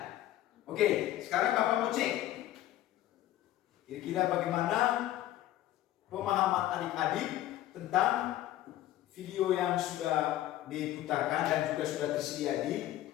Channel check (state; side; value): quieter; right; 13.9 dB